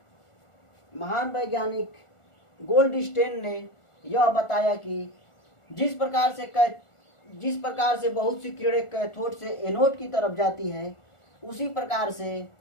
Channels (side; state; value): right; late; 1.4 ms